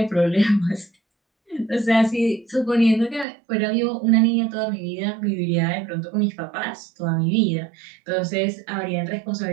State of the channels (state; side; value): drops out; left; at 3.2 s